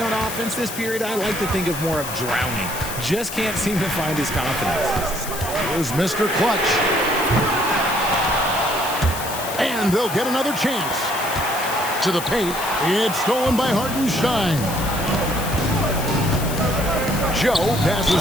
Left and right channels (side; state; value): left; noise; hiss, 9 dB below the sound